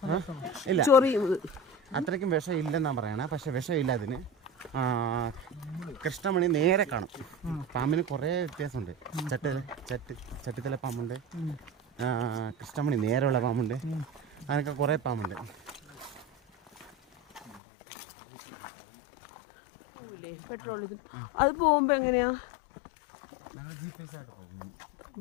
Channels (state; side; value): drops out; right; at 17.6 s